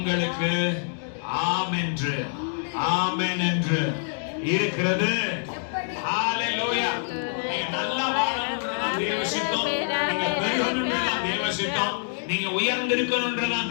ஆமென் என்று, ஆமென் என்று இருக்கிறது. ஹல்லேலூயா. நீங்க நல்லா வாழணும்ன்றதான் தேவ சித்தம். நீங்க பெருகணும்ன்றதான் தேவ சித்தம். நீங்க உயர்ந்திருக்கணும்ன்றதான்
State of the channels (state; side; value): silent; right; digital silence